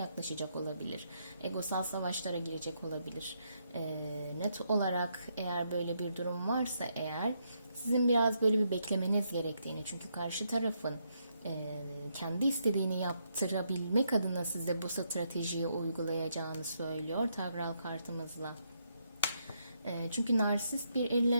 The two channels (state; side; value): inverted; both; correlation -0.77